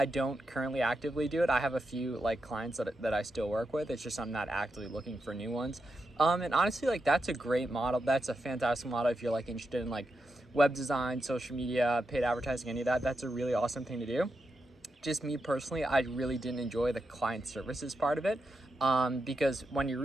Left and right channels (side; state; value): both; normal; correlation 0.86